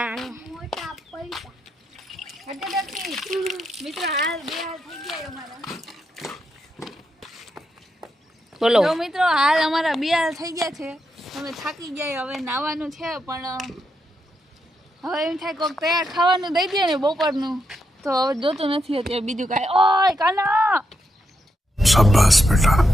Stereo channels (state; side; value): normal; both; correlation 0.82